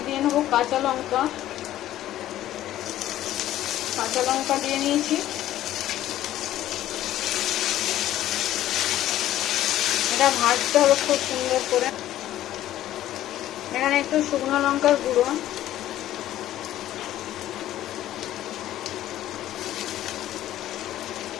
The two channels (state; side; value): quieter; right; 13.3 dB